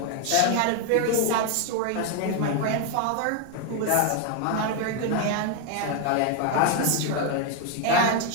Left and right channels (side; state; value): both; different; correlation 0.01